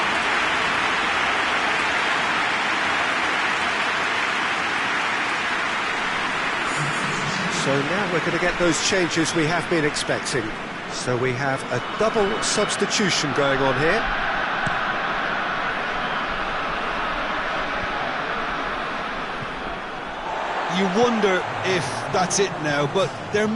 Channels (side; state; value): both; identical; correlation 1.00